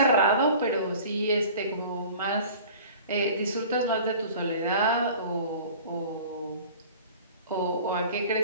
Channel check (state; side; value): inverted; both; correlation -0.43